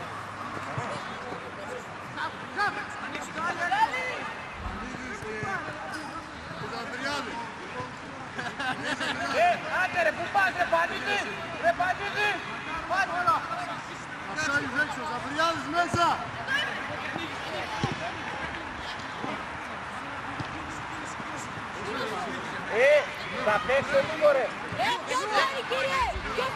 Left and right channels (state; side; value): identical; both; correlation 1.00